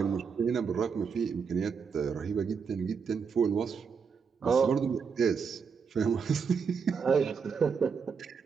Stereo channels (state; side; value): quieter; left; 6.0 dB